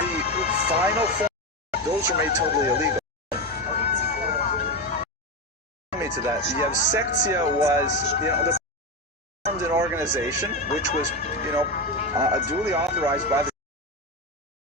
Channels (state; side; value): normal; both; correlation 0.15